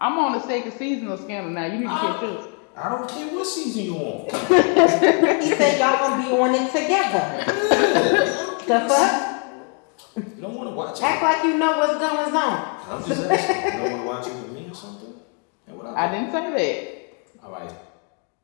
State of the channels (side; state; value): right; quieter; 39.5 dB